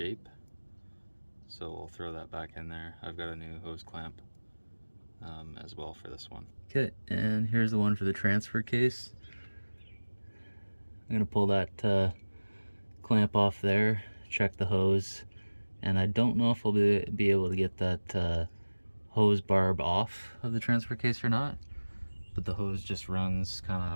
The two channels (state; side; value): inverted; both; correlation -1.00